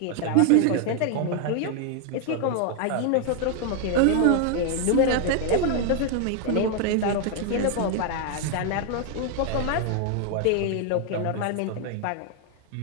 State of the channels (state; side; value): different; both; correlation 0.00